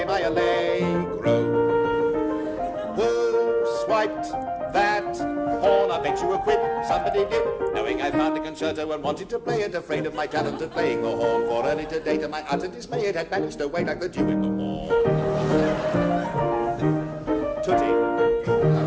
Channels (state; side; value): identical; both; correlation 1.00